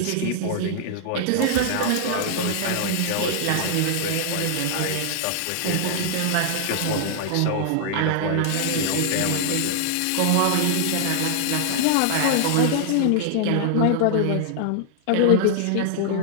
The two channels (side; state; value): both; different; correlation -0.01